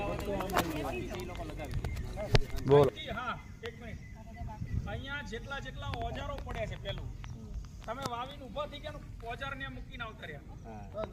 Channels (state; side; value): identical; both; correlation 1.00